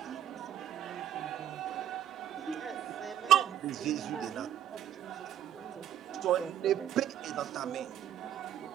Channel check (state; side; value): quieter; left; 10.6 dB